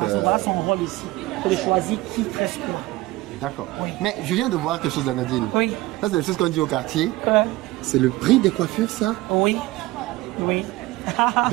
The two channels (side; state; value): left; quieter; 19.0 dB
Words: Voilà son rôle ici. C'est de choisir qui tresse quoi. D'accord. Oui. Mais je viens de voir quelque chose d'Anadine. Oui. Ça, c'est des choses qu'on dit au quartier. C'est le prix des coiffures, ça? Oui. Oui.